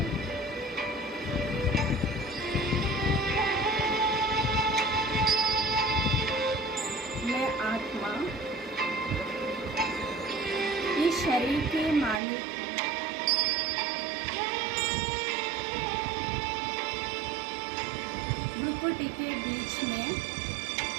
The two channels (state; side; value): drops out; left; at 12.2 s